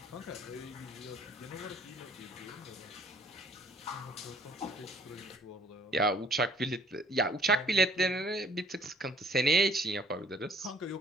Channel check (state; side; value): normal; both; correlation 0.58